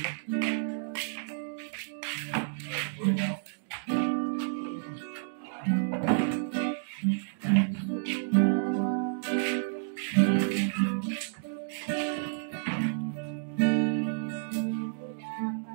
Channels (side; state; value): left; silent; digital silence